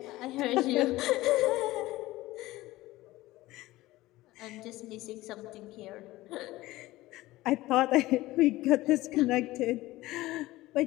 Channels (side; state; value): right; quieter; 17.8 dB